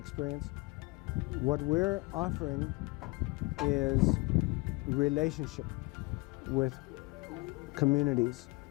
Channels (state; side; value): quieter; right; 25.2 dB